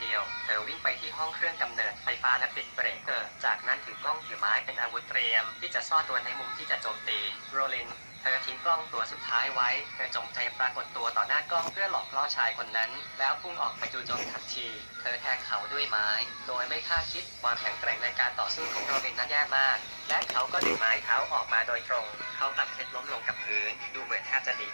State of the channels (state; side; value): inverted; both; correlation -1.00